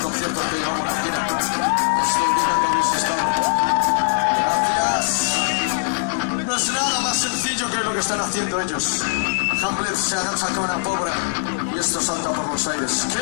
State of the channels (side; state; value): right; silent; digital silence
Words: que llevamos aquí. Esto indica que habéis estado. Gracias. No es nada más sencillo que lo que están haciendo ellos. Hamlet se agacha con una pobre y esto salta por los aires.